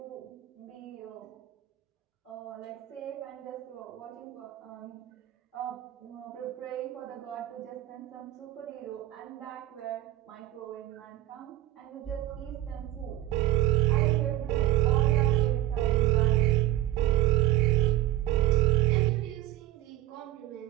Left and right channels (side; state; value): left; quieter; 14.6 dB